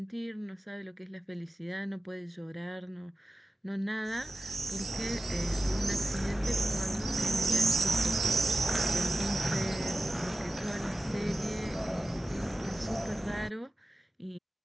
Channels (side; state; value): both; normal; correlation 0.94